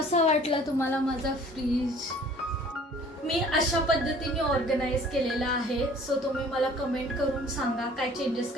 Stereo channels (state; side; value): normal; both; correlation 0.51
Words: वाटलं तुम्हाला माझा फ्रीज? मी अशा पद्धतीने ऑर्गनाइज केलेला आहे. सो तुम्ही मला कमेंट करून सांगा काय चेंजेस